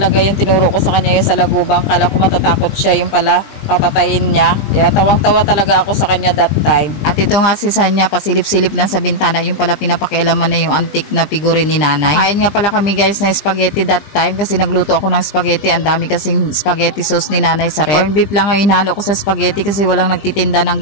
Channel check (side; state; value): right; late; 20 ms